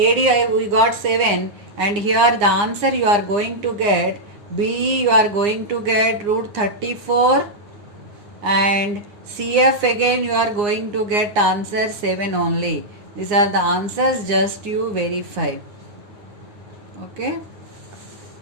we got 7 and here the answer you are going to get B you are going to get root 34 and CF again you are going to get answer 7 only. These are the answers, just you verify. Okay.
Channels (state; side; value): late; left; 9.7 ms